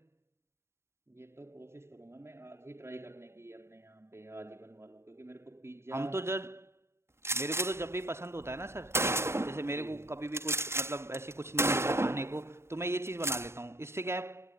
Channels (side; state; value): left; late; 0.13 ms